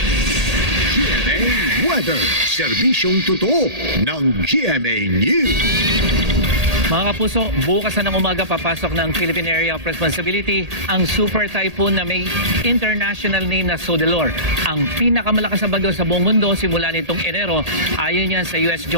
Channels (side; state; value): left; late; 1.8 ms